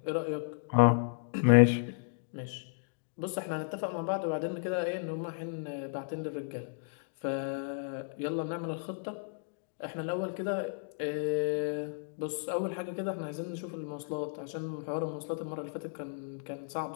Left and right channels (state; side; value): silent; right; digital silence